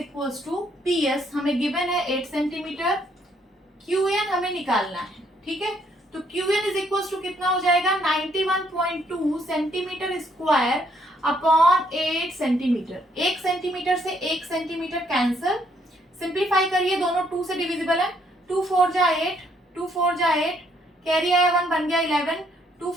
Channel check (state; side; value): normal; both; correlation 0.69